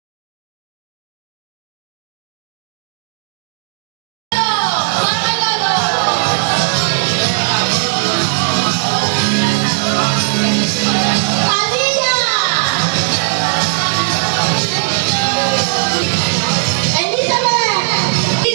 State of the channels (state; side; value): silent; left; digital silence